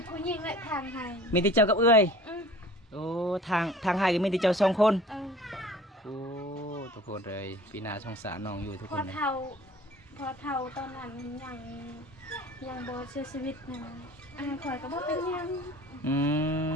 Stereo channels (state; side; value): normal; both; correlation 0.45